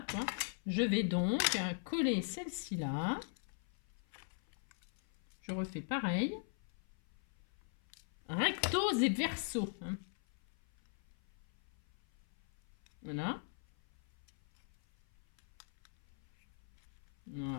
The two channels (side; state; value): right; silent; 51 dB below the other